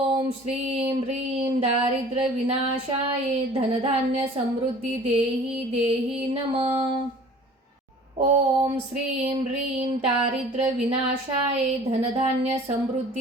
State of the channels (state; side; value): normal; both; correlation 0.47